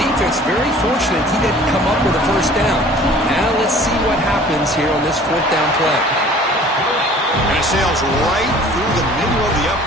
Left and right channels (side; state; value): both; normal; correlation 0.49